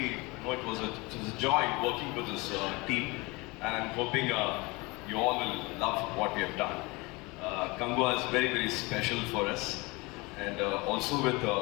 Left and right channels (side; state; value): right; quieter; 25.2 dB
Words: know it was a joy working with this team, and I'm hoping you all will love what we have done. Kangwa is very special for us, and also with